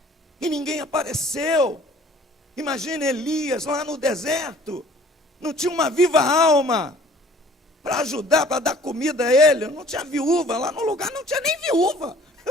e ninguém apareceu. Imagina Elias lá no deserto, não tinha uma viva alma para ajudar, para dar comida a ele, não tinha viúva, lá no lugar não tinha nem viúva.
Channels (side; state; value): both; normal; correlation 0.53